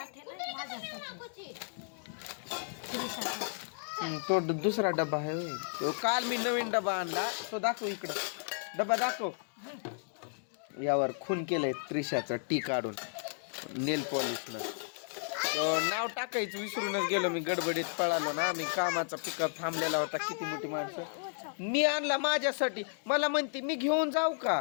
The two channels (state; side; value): silent; right; digital silence